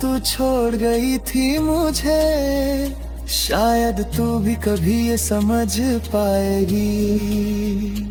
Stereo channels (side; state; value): both; identical; correlation 1.00